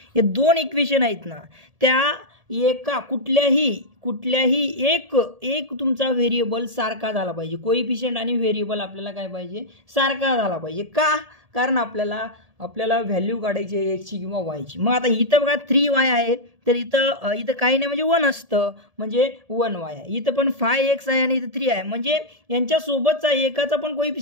हे 2 इक्वेशन आहेत ना, त्या एका कुठल्याही एक तुमचा व्हेरिएबल सारखा झाला पाहिजे. कोइफिशियंट आणि व्हेरिएबल आपल्याला काय पाहिजे, सारखा झाला पाहिजे. का? कारण आपल्याला व्हॅल्यू काढायची आहे एक्सची किंवा वायची. मग आता इथं बघा 3y आहे, तर इथं काही नाही, म्हणजे 1 असतं, म्हणजे 1y आहे. इथं पण 5x आहे आणि इथं 3 आहे, म्हणजे यांच्यासोबतचा एकाचा पण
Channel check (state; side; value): late; left; 1.7 ms